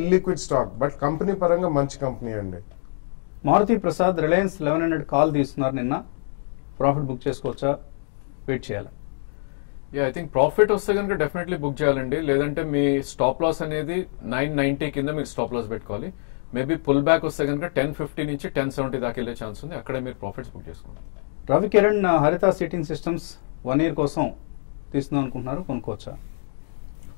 ఇల్లిక్విడ్ స్టాక్, బట్ కంపెనీ పరంగా మంచి కంపెనీ అండి. మారుతి ప్రసాద్ రిలయన్స్ 1100 కాల్ తీసుకున్నారు నిన్న, ప్రాఫిట్ బుక్ చేసుకోవచ్చా, వెయిట్ చేయాలి? ఐ థింక్ ప్రాఫిట్ వస్తే కనుక డెఫినెట్లీ బుక్ చేయాలండి. లేదంటే మీ స్టాప్ లాస్ అనేది 990 కింద మీరు స్టాప్ లాస్ పెట్టుకోవాలి. మేబీ పుల్ బ్యాక్ వస్తే కనుక 1050 నుంచి 1070 దాకా వెళ్ళే ఛాన్స్ ఉంది, అక్కడే మీరు ప్రాఫిట్స్ బుక్ చేసుకోండి. రవి కిరణ్ హరిత సీటింగ్ సిస్టమ్స్ 1 year కోసం తీసుకుందాం అనుకుంటున్నారు, కొనుక్కోవచ్చా?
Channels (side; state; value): right; silent; digital silence